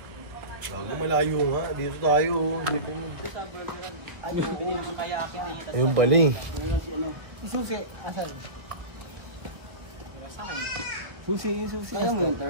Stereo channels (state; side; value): late; left; 1.2 ms